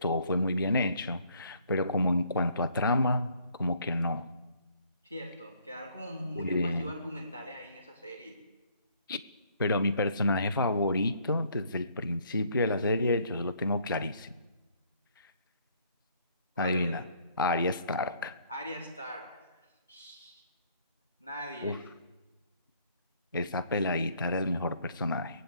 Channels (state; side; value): inverted; both; correlation -0.63